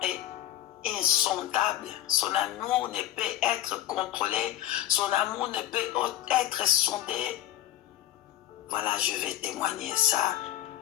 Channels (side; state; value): right; quieter; 13.4 dB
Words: et insondable. Son amour ne peut être contrôlé. Son amour ne peut être sondé. Voilà, je vais témoigner ça.